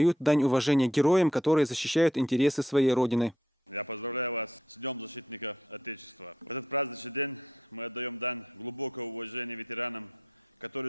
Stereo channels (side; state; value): both; normal; correlation 0.71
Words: дань уважения героям, которые защищают интересы своей родины. Я поздравляю вас с Днем защитника Отечества. В этот праздничный день мы отдаем дань глубокого уважения ветеранам, которые